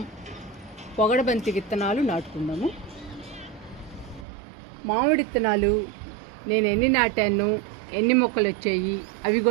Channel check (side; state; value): left; drops out; at 4.2 s